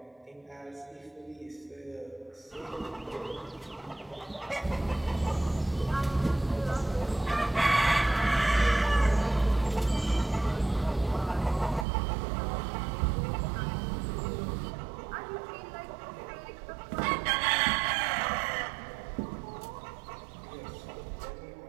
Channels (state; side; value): drops out; left; at 11.9 s